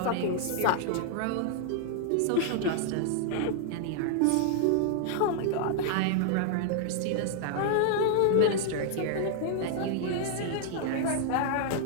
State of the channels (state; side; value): different; both; correlation 0.00